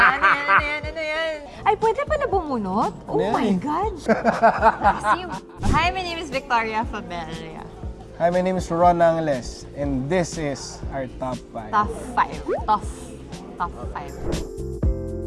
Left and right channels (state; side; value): identical; both; correlation 1.00